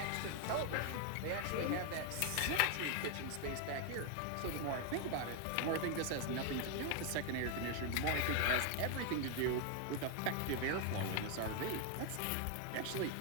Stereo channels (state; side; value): different; both; correlation 0.00